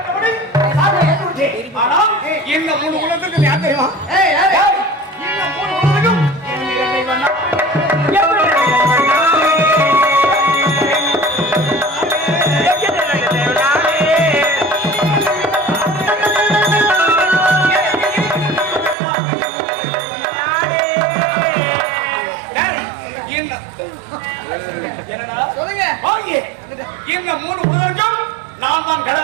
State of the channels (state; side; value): drops out; left; at 18.9 s